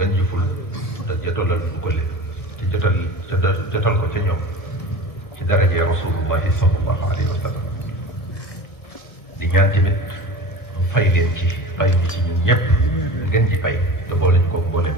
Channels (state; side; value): late; right; 1.5 ms